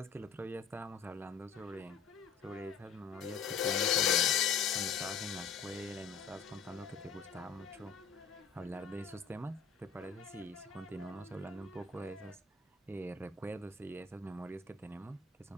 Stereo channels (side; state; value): right; quieter; 6.4 dB